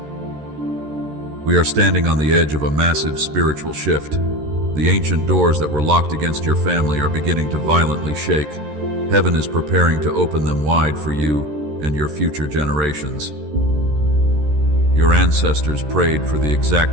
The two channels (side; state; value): left; late; 13 ms